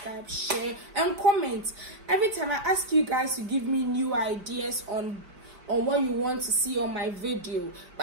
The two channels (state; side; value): late; left; 5.0 ms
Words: share, and comment. Every time I ask you guys to give me new ideas on what you want to see on my video,